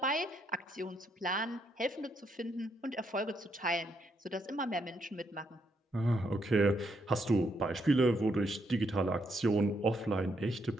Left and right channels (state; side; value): normal; both; correlation 0.76